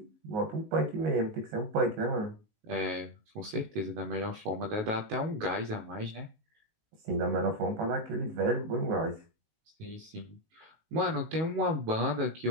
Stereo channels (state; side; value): late; left; 19 ms